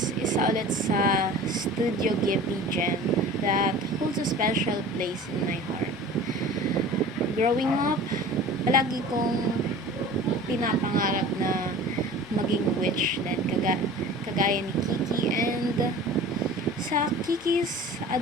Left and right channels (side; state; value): both; normal; correlation 0.40